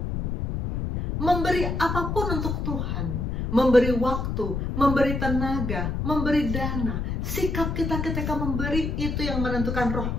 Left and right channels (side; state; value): left; noise; rumble, 1 dB below the sound